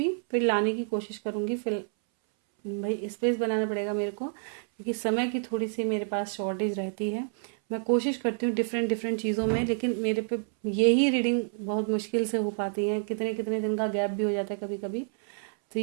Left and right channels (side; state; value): left; silent; 59 dB below the other